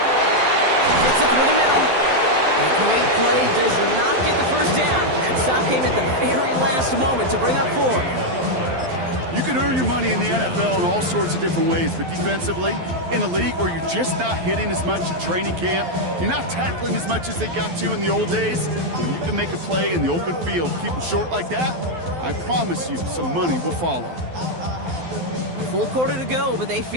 Gets it through the middle. A great play does not get the 1st down. That stop came at the very last moment to bring up 4. You can earn your money in the NFL in all sorts of different ways, but defensively, in a league where you're just not hitting as much in training camp, you're not tackling as much as they got to in the old days, when you can make a play in the open field, keep them short like that, I promise you some money will follow. Full quarter to go, but they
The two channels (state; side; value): late; left; 12 ms